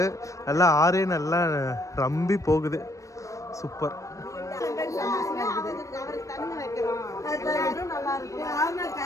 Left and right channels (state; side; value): late; right; 0.16 ms